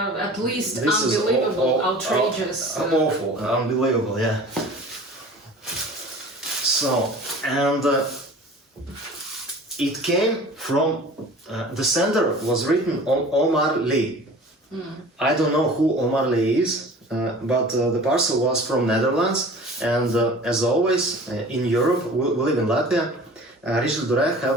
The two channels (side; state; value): both; normal; correlation 0.43